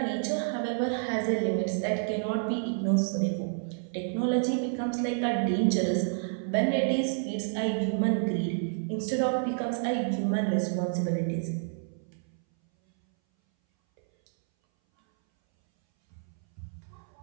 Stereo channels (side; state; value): left; silent; 58 dB below the other